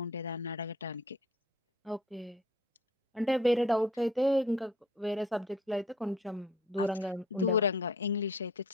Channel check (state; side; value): normal; both; correlation 0.52